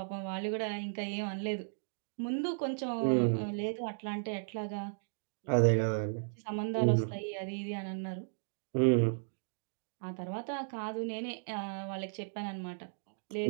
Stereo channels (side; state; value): left; silent; digital silence